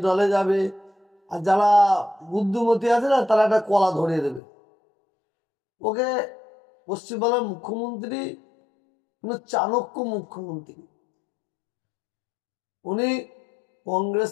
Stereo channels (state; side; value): drops out; right; at 4.4 s